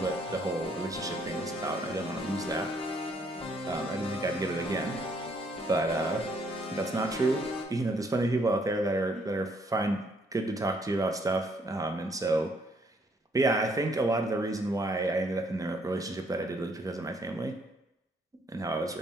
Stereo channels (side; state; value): both; normal; correlation 0.68